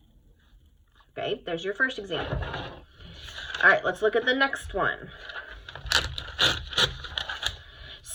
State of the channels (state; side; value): identical; both; correlation 1.00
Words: Okay, there's your first example. All right, let's look at the next one.